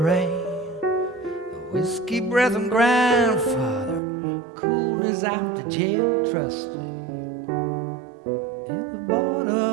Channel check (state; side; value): drops out; left; at 4.0 s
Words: the whiskey breath and grandfather, coolness after jail trustee. In the